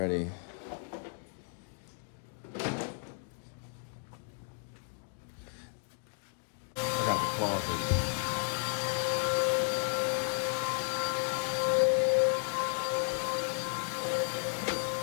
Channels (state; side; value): silent; right; 55 dB below the other